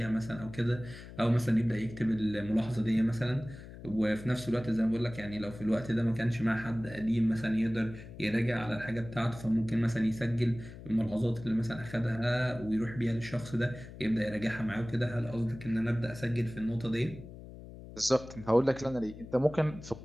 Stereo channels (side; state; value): left; noise; hum, 15 dB below the sound